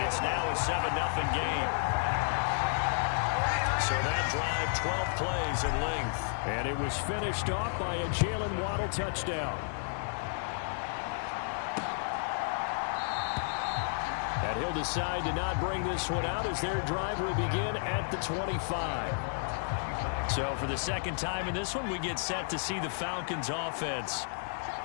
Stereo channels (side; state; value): right; silent; digital silence